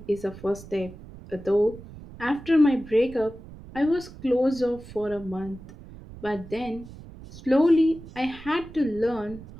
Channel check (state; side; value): noise; right; rumble, 17 dB below the sound